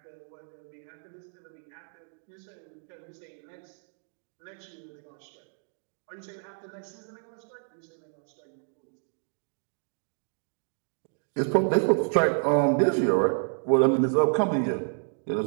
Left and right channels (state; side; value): silent; left; 58 dB below the other